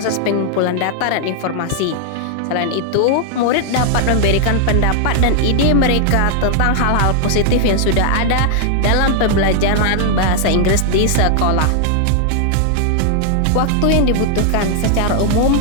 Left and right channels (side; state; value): both; different; correlation 0.00